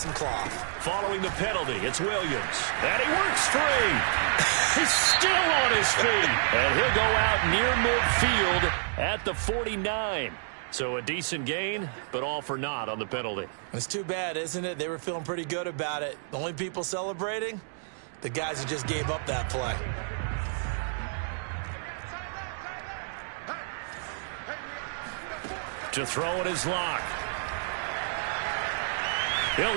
cloth. Following the penalty, it's Williams. And he works free. He's still on his feet. And he'll go out near midfield at the 49. So a decent gain, but all for naught on the penalty. It's too bad, isn't it? They were feeling pretty good about it. The only people celebrating? The guys who just gave up that play. To throw it is Locke. He'll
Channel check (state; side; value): silent; left; digital silence